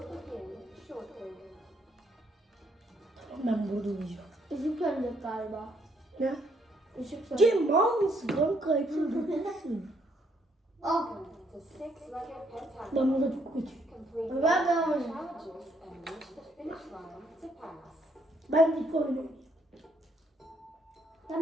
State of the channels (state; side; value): normal; both; correlation 0.70